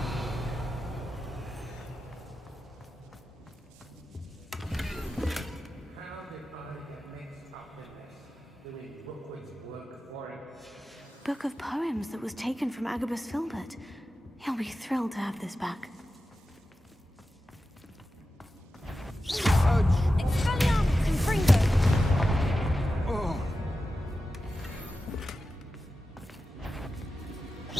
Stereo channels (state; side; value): normal; both; correlation 0.92